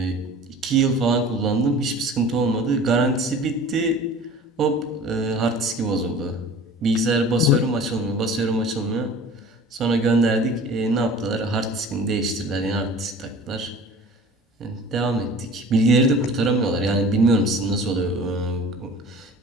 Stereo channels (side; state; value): both; normal; correlation 0.43